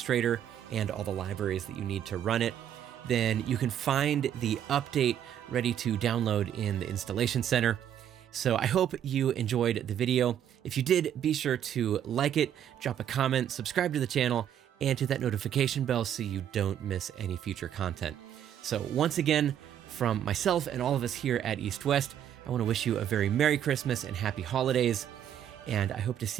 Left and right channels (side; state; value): left; quieter; 10.0 dB